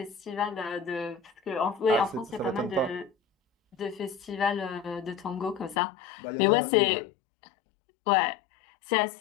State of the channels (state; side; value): drops out; right; at 5.8 s